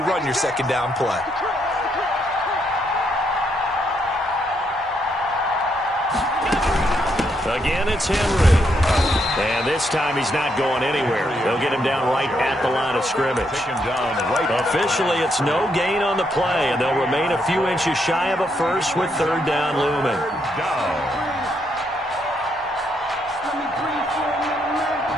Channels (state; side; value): normal; both; correlation 0.76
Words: run your 2nd down play. Again, it's Henry. And this time he's not going anywhere. They'll get him down right at the line of scrimmage. Officially, it's no gain on the play, and they'll remain a few inches shy of a first with 3rd down looming.